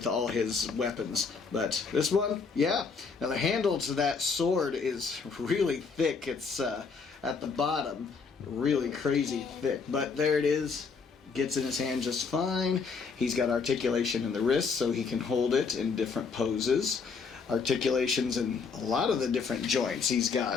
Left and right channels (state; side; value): quieter; right; 5.1 dB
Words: all his weapons. But this one, yeah. Now the handle to that sword is really thick. It's at the bottom, really crazy thick. But there it is. Gets in his hand just fine. He's got articulation in the wrist so he can hold it in different poses. Articulations in a lot of the different joints. He's